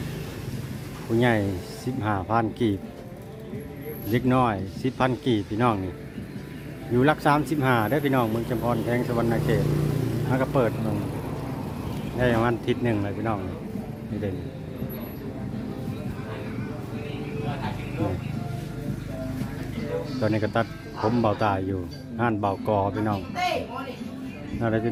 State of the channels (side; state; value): both; identical; correlation 1.00